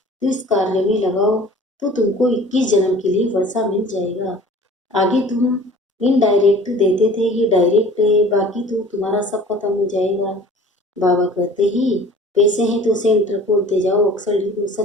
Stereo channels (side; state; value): both; normal; correlation 0.46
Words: इस कार्य में लगाओ तो तुमको 21 जन्म के लिए वर्षा मिल जाएगा। आगे तुम इनडायरेक्ट देते थे, ये डायरेक्ट है, बाकी तो तुम्हारा सब खत्म हो जाएगा। बाबा कहते ही पैसे हैं तो सेंटर खोलते जाओ, अक्सर लिखो